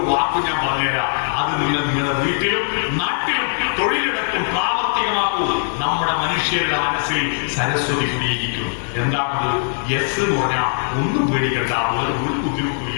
വാക്ക് ഞാൻ പറഞ്ഞുതരാം. അത് നിങ്ങളുടെ വീട്ടിലും നാട്ടിലും തൊഴിലിടത്തും പ്രാവർത്തികമാക്കൂ. നമ്മുടെ മനുഷ്യരുടെ മനസ്സിൽ സരസ്വതി കുടിയിരിക്കും. എന്താണത്? എസ് എന്ന് പറഞ്ഞാൽ ഒന്നും പേടിക്കണ്ട, ഒരു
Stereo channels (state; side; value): silent; right; 66 dB below the other